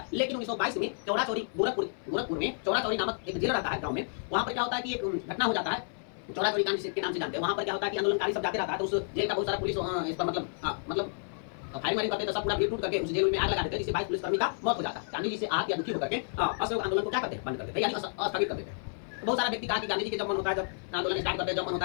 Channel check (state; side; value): silent; right; digital silence